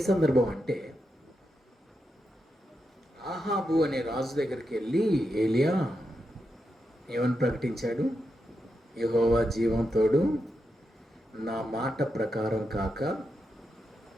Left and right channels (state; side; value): normal; both; correlation 0.86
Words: సందర్భం అంటే, ఆహాబు అనే రాజు దగ్గరికి వెళ్ళి ఏలియా ఏమని ప్రకటించాడు? యెహోవా జీవంతోడు, నా మాట ప్రకారం కాక